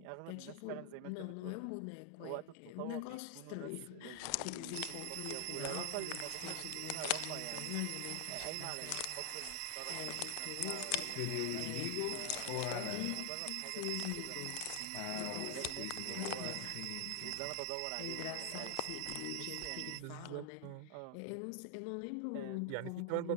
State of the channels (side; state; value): both; different; correlation 0.00